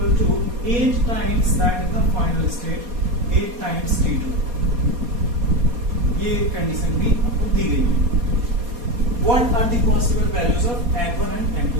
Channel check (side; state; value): left; late; 4.2 ms